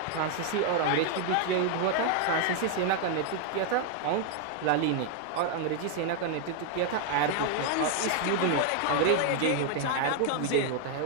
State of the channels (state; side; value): different; both; correlation 0.00